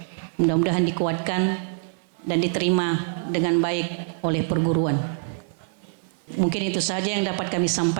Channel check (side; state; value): left; silent; 59 dB below the other